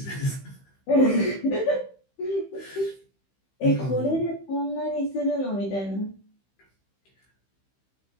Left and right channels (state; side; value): late; right; 15 ms